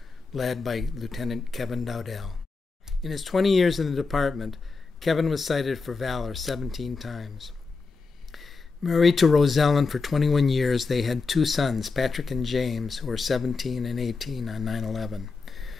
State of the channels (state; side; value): quieter; right; 4.3 dB